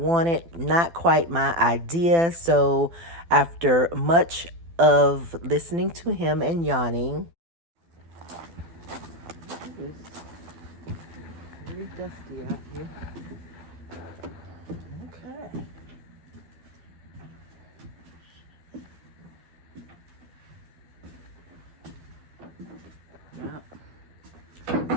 not quite my idea. So after much of listening to him and yawning, It's very dusty out here. Okay. Yeah.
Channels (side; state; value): left; late; 12 ms